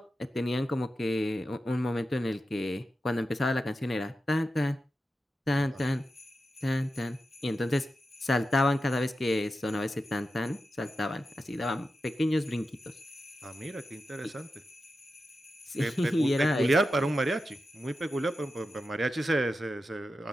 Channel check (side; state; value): both; normal; correlation 0.91